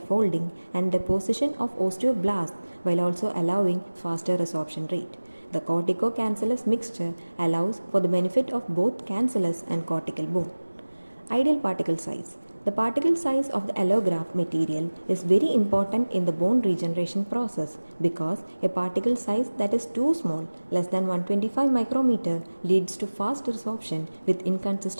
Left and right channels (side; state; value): both; inverted; correlation -1.00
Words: and deposition of osteoblasts while also allowing faster resorption rate. The cortico-cancellous mixture allows for the benefit of both cancellous and cortical bone. Ideal particle size. The particle size of the allograft material is very important in the bone regeneration process because a particle size that is too small, less than 125 micrometer, leads to fast resorption with